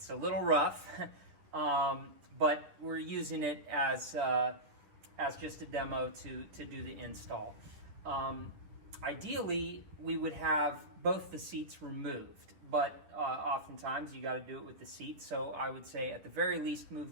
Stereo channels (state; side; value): late; left; 10 ms